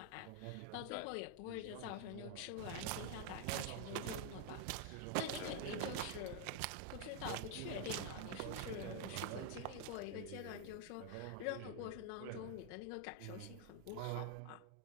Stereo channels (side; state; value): both; different; correlation 0.00